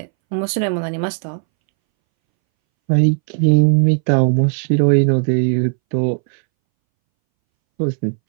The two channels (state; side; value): silent; left; 65 dB below the other